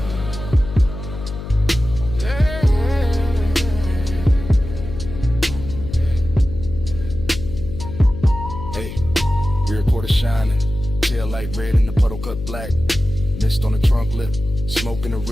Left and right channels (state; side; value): noise; left; hum, 9 dB below the sound